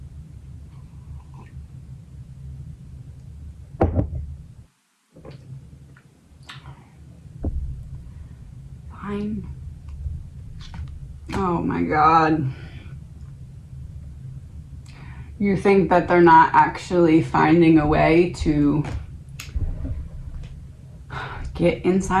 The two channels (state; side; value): identical; both; correlation 1.00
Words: Fine. Oh my God. You think that they're not actually finding a way to get